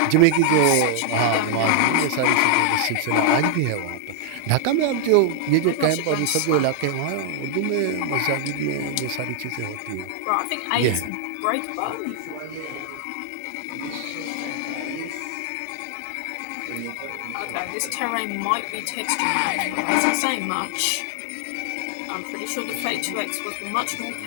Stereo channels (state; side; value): different; both; correlation -0.01